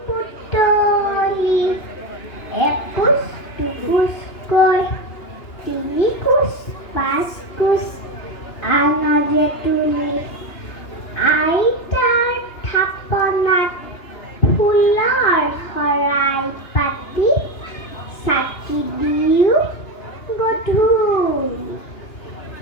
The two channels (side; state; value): right; late; 2.9 ms